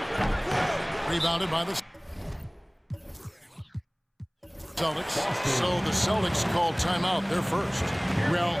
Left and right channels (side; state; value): both; identical; correlation 1.00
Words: Rebounded by the Celtics. So the Celtics called timeout. They're first. Well,